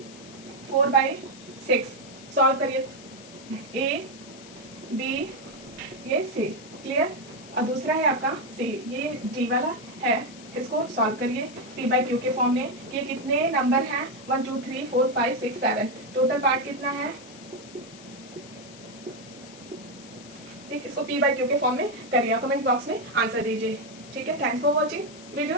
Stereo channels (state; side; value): noise; left; hiss, 19 dB below the sound